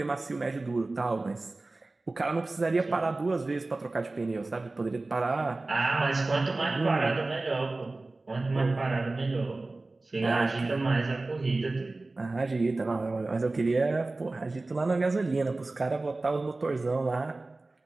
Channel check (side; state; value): left; quieter; 3.2 dB